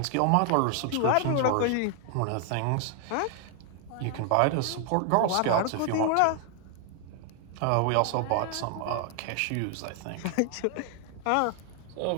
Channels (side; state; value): both; different; correlation 0.00